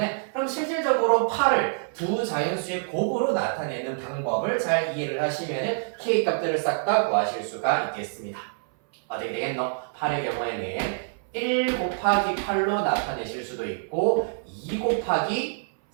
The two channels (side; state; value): left; silent; 59 dB below the other